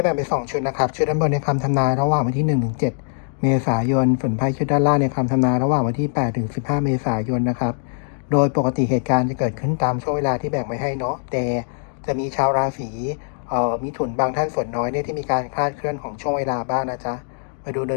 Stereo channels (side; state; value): right; silent; digital silence